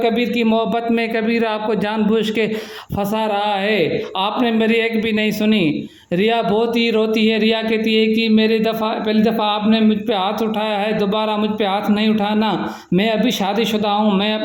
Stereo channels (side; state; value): both; identical; correlation 1.00